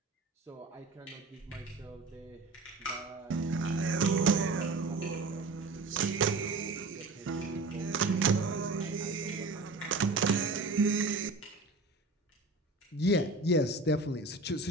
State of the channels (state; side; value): quieter; left; 3.3 dB